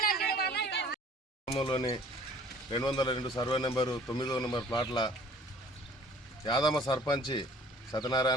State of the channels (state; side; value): normal; both; correlation 0.52